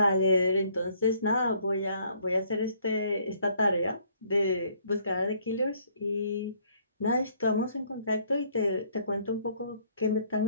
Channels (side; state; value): both; inverted; correlation -0.64